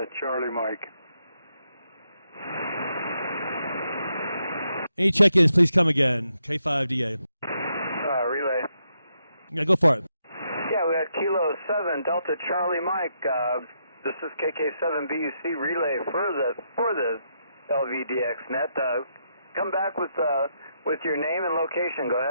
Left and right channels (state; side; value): inverted; both; correlation -0.80